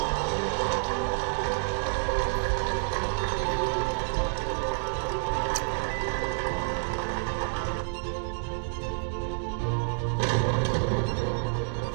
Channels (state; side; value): silent; left; digital silence